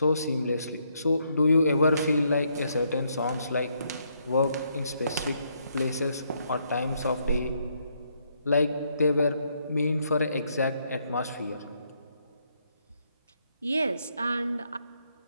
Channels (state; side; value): inverted; both; correlation -0.74